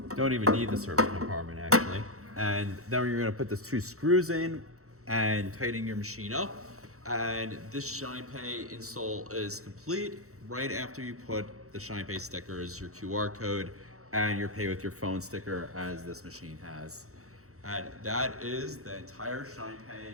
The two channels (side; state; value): left; late; 0.64 ms